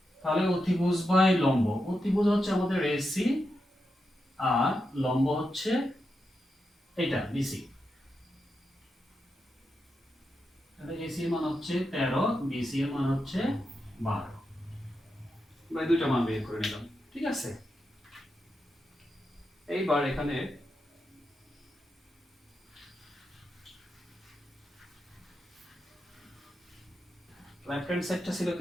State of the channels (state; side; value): normal; both; correlation 0.87